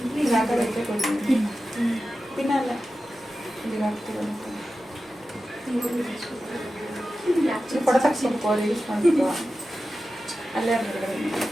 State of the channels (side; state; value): both; normal; correlation 0.93